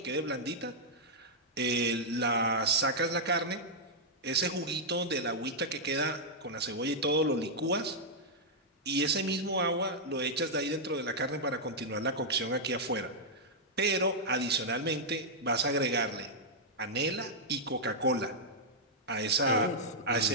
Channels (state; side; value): normal; both; correlation -0.07